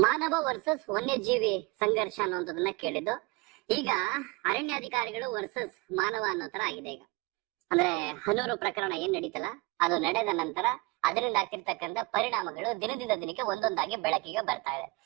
ವರ್ಸಸ್ ವನ್ಯಜೀವಿ ಸಂಘರ್ಷ ಅನ್ನೋದನ್ನ ಕೇಳಿದ್ದು. ಈಗ ಅರಣ್ಯಾಧಿಕಾರಿಗಳು ವರ್ಸಸ್ ಮಾನವ ಅನ್ನೋ ತರ ಆಗಿದೆ. ಈಗ ಅಂದ್ರೆ ಹನೂರು ಪ್ರಕರಣ ಏನ್ ನಡೀತಲ್ಲ, ಅದು ನಡೆದ ನಂತರ ಅದರಿಂದ ಆಗ್ತಿರ್ತಕ್ಕಂಥ ಪರಿಣಾಮಗಳು ದಿನದಿಂದ ದಿನಕ್ಕೆ ಒಂದೊಂದಾಗಿ ಬೆಳಕಿಗೆ ಬರ್ತಾ ಇದೆ.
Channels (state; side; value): quieter; left; 25.9 dB